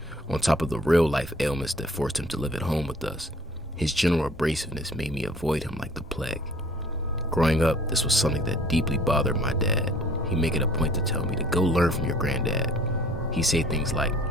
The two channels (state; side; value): normal; both; correlation 0.53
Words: On top of the real-life ailments that forced him to live at home with us, his general abrasiveness made me avoid him like the plague. Growing up, this was something that deeply bothered my dad. He'd make it a point to tell me to go learn from your granddad. He'd say things like,